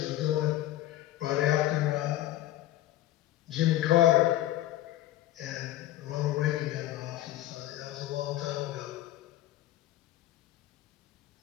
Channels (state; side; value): quieter; right; 14.6 dB